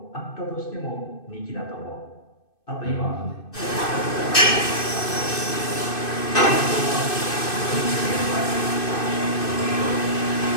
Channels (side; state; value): right; late; 2.6 ms